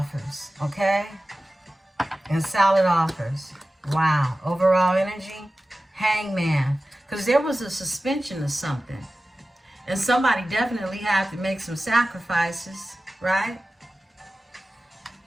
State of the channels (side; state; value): both; normal; correlation 0.95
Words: Okay? And salad offers. Wow. Overall energy. Hangman. Because there was a suspension of something. And somebody definitely had to make some sacrifices, right?